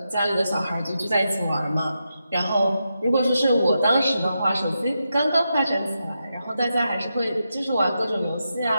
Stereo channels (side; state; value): both; inverted; correlation -0.87